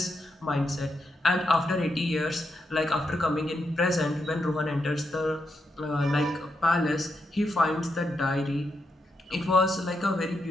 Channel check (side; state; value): both; normal; correlation 0.83